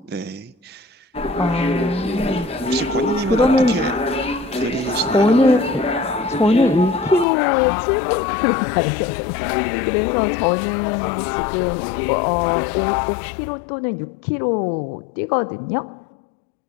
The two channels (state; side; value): drops out; right; at 7.2 s